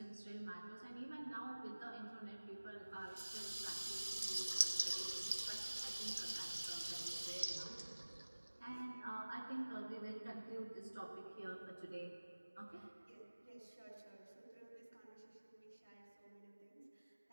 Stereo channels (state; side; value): inverted; both; correlation -1.00